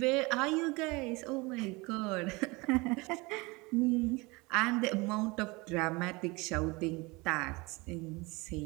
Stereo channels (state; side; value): quieter; left; 25.0 dB